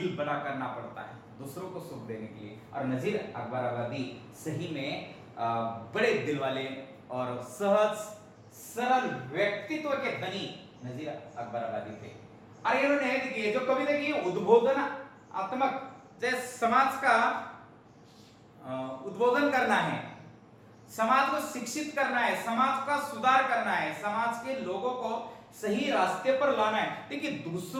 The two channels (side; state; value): both; identical; correlation 1.00